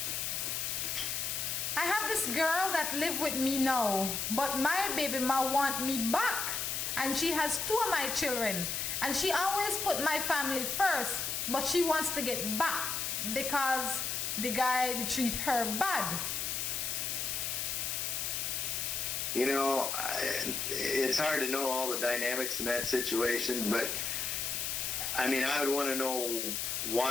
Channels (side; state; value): left; noise; hiss, 1 dB below the sound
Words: I have this girl that live with me now, but my baby ma want me back, and she has 2 of my children, and she always put my family first, but she wants to get back because the guy they treat her bad. You know, it's hard to know all the dynamics in that situation, but I mean, I would want to know